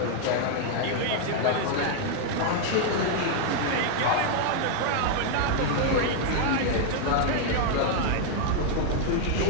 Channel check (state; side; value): different; both; correlation 0.00